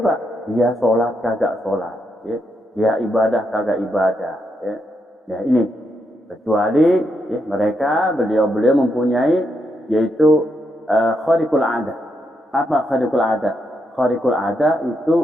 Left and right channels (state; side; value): normal; both; correlation 0.81